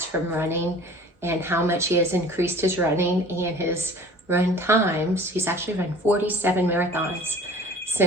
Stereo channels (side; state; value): both; normal; correlation 0.46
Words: from running and how much he has increased his running and his run times. He's actually run 47 marathons